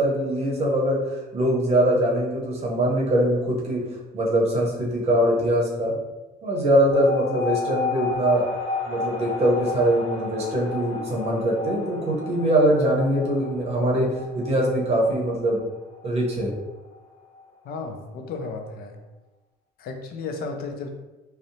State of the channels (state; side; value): normal; both; correlation 0.50